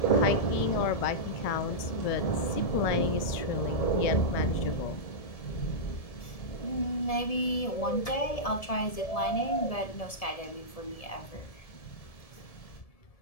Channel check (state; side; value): late; right; 1.7 ms